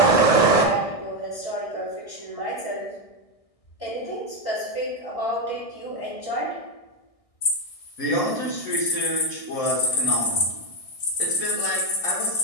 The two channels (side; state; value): right; late; 1.6 ms